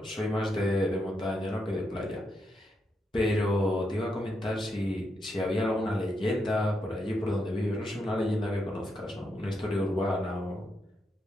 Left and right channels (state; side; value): normal; both; correlation 0.82